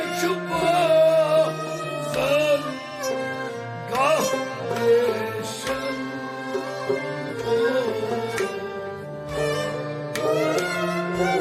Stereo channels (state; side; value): identical; both; correlation 1.00